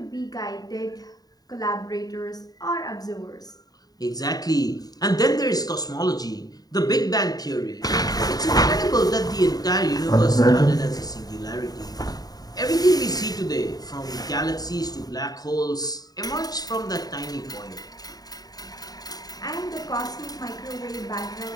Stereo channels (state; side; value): late; right; 0.18 ms